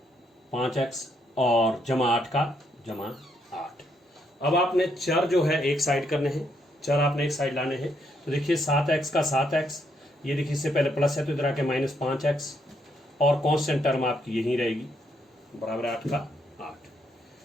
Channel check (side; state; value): both; normal; correlation 0.74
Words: 5x और जमा 8 का जमा 8। अब आपने चर जो है एक साइड करने हैं, चर आपने एक साइड लाने हैं, तो देखिए 7x का 7x, ये देखिए इससे पहले प्लस है तो इधर आके -5x, और कांस्टेंट टर्म आपकी यही रहेगी, बराबर 8 का 8।